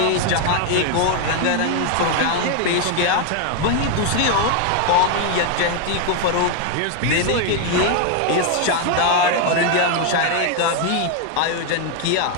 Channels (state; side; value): different; both; correlation 0.01